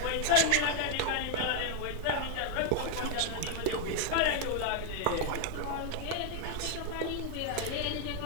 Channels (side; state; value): both; different; correlation 0.00